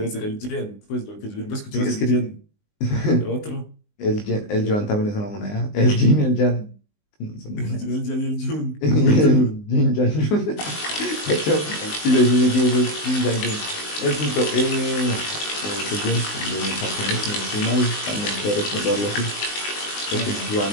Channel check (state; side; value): late; right; 19 ms